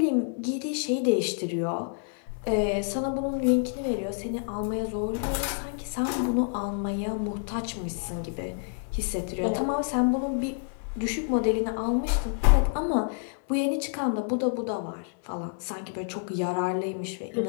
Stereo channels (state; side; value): silent; right; digital silence